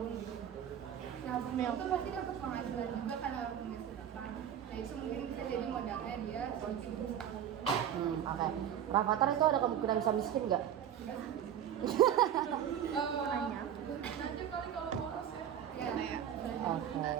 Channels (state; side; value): quieter; left; 9.6 dB